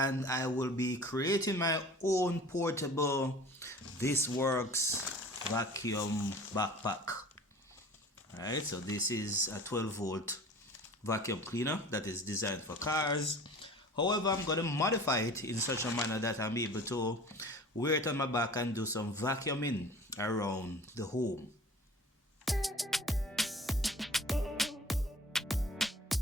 I will be creating my own portable ThisWorx vacuum backpack. Alright, so this is a 12-volt vacuum cleaner that is designed for cars. However, I'm going to modify it in such a manner that I'm able to wear it on my back and do some vacuuming around the home.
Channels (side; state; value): both; normal; correlation 0.43